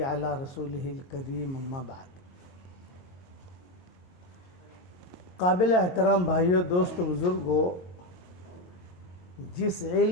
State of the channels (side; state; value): right; late; 22 ms